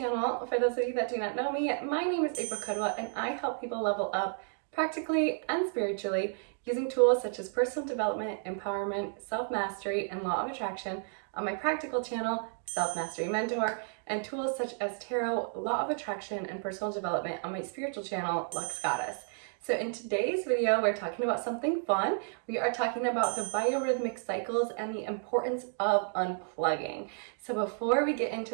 For those of you that do not know me, my name is KUDWA and I help people level up practically and spiritually using tools such as personal development, empowerment, self-mastery, and law of attraction on my practical channel, Self-Mastery Mentor, and tools such as tarot, law of attraction, and personal development on my spiritual channel, Lux Goddess. So in today's video, we're talking about something fun. We are talking about the biorhythmic cycles and the importance of unplugging. So before we get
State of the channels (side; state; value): left; silent; 57 dB below the other